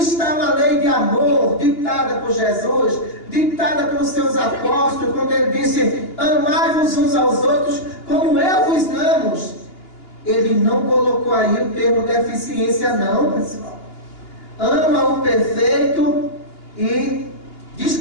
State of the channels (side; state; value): right; late; 2.8 ms